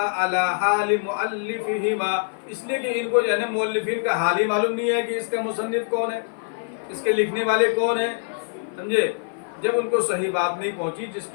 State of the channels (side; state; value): right; silent; 55 dB below the other